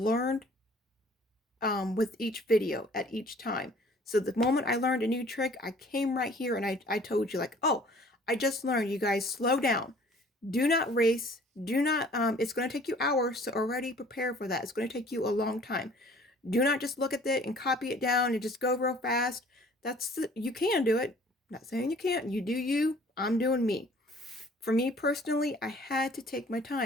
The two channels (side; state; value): both; normal; correlation 0.53